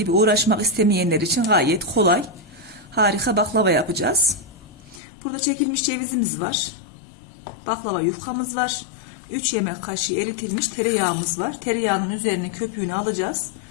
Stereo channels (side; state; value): right; drops out; at 5.0 s